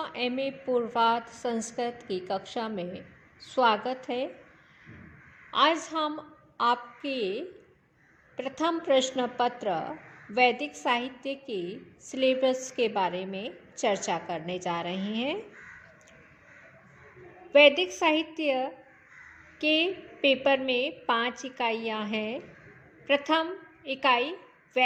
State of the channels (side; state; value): both; identical; correlation 1.00